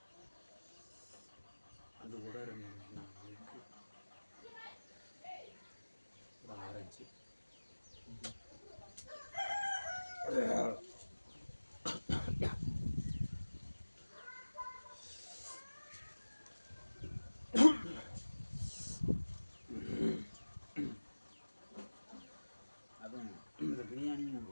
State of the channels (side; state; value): both; inverted; correlation -1.00